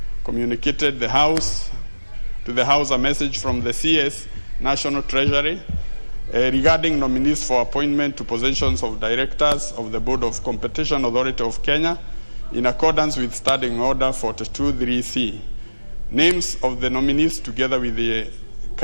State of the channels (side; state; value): both; inverted; correlation -1.00